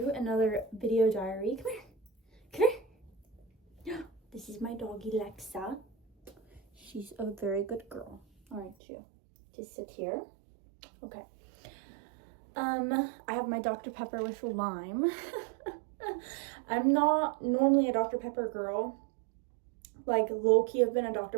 another video diary. Come here. Come here. This is my doggy, Lexa. She's a very good girl, aren't you? Just sit here. Okay. I have my Dr. Pepper with lime. I'm not normally a Dr. Pepper girl. Like, low-key, I've been a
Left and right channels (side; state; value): left; drops out; at 8.8 s